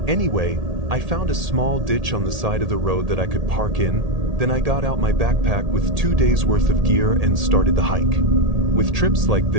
Anyway, I found a small ditch on the side of the road that I could park in, then I got out my backpack with 2 days worth of gear and started the hike. With trips like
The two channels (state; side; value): late; left; 1.8 ms